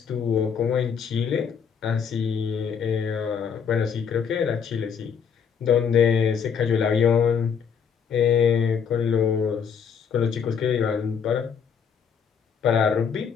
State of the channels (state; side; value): quieter; right; 6.9 dB